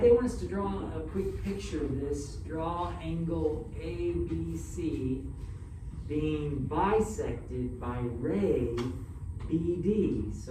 they want us to draw a quick picture of this. Draw angle ABC being bisected by ray BD.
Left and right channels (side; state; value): both; identical; correlation 1.00